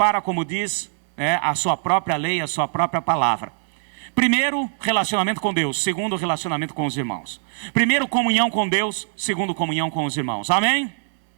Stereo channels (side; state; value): left; silent; 64 dB below the other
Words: como diz, a sua própria lei, a sua própria palavra. Primeiro, relacionamento com Deus. Segundo, relacionamento com os irmãos. Primeiro, comunhão com Deus. Segundo, comunhão com os irmãos. Amém?